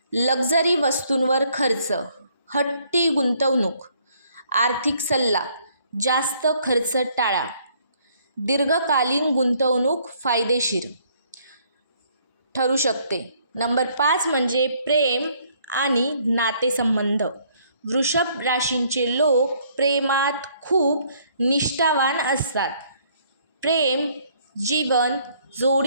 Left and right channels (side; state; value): both; inverted; correlation -0.65